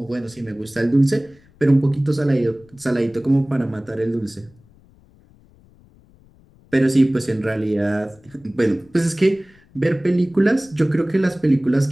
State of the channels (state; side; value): noise; left; rumble, 29 dB below the sound